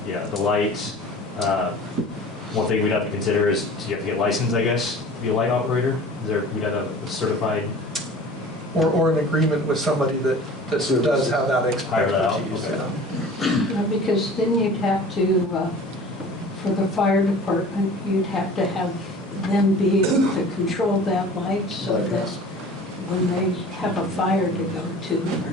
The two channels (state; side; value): normal; both; correlation 0.43